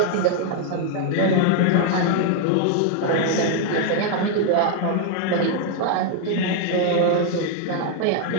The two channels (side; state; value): both; different; correlation 0.00